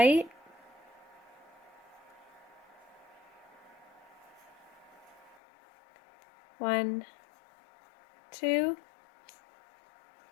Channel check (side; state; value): right; drops out; at 5.4 s